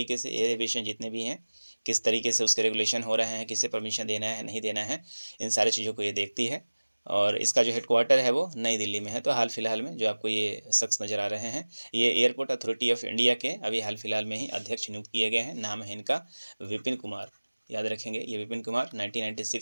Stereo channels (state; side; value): inverted; both; correlation -1.00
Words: से एयर एविएशन जितने भी हैं किस तरीके से उसके रेगुलेशन हो रहे हैं, किसे परमिशन देना है नहीं देना है, इन सारी चीज़ों को ये देखती है। और इसका जो हेडक्वार्टर है वो नई दिल्ली में है। तो हाल फिलहाल में जो आपको ये शख्स नज़र आ रहे हैं ये एयरपोर्ट अथॉरिटी ऑफ इंडिया के अभी हाल फिलहाल में ही अध्यक्ष नियुक्त किए गए हैं। नाम है इनका विपिन कुमार, याद रखेंगे। ये विपिन कुमार